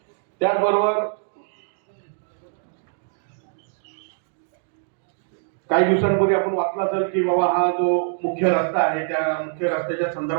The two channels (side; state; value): left; silent; digital silence